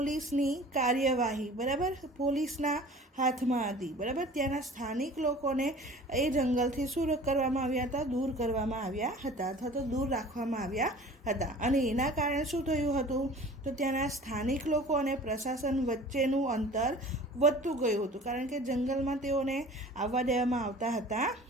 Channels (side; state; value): both; normal; correlation 0.44